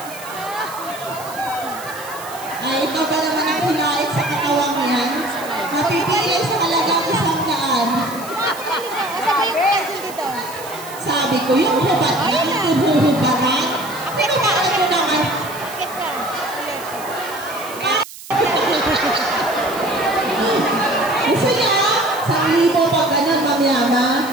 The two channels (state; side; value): noise; right; hiss, 15 dB below the sound